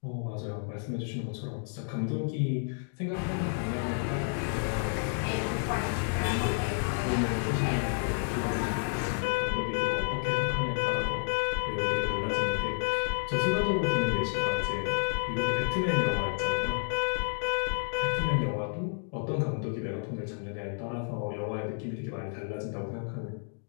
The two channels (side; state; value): right; silent; 57 dB below the other